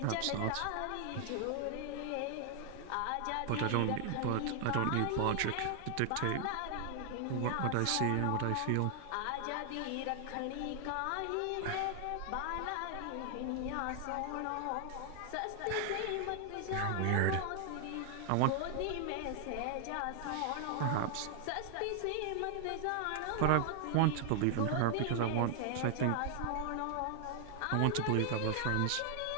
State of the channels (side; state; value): both; different; correlation 0.00